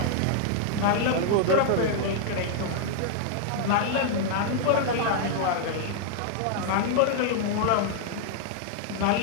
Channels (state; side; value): different; both; correlation -0.01